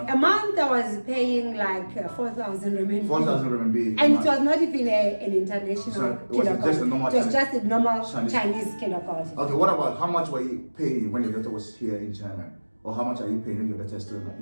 A month I was paying like 4,000 renminbi. 4,000 renminbi. And it was not even an international kindergarten. Just a normal it was just a normal Chinese kindergarten. Okay, what about how much were you paying when your daughter was here in China? Or how much are you paying when your daughter is still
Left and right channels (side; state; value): both; inverted; correlation -1.00